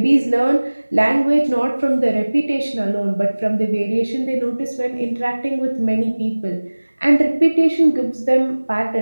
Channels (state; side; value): inverted; both; correlation -1.00